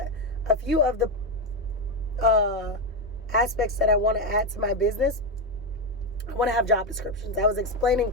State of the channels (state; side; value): normal; both; correlation 0.08